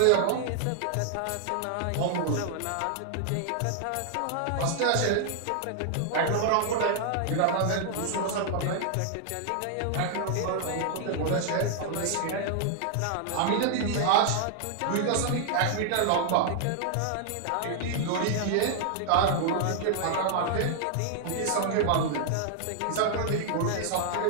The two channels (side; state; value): both; different; correlation 0.00